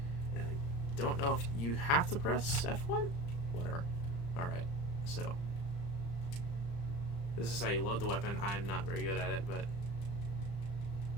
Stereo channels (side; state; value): right; late; 35 ms